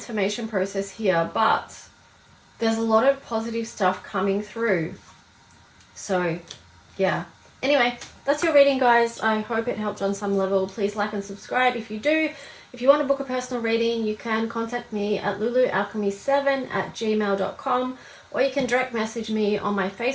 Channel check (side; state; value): both; identical; correlation 1.00